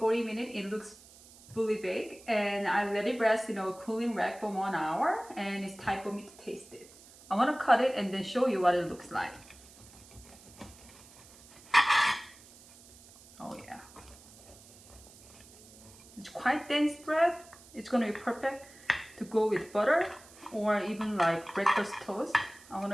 minutes, it looks fully baked, and I let it rest in a cooling rack for 1 hour, and it's time for me to taste it. I want to cut it and then show you what it looks like. Oh yeah. It's quite dense bread. It's going to be perfect to go with butter or even like breakfast toast. I want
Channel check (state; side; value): noise; right; hiss, 22 dB below the sound